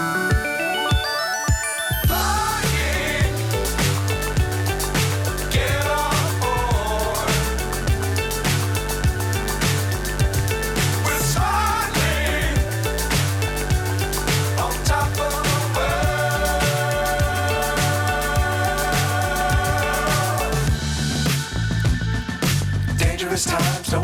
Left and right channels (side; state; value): both; identical; correlation 1.00